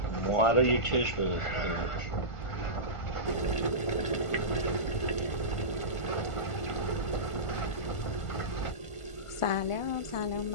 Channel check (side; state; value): right; late; 1.5 ms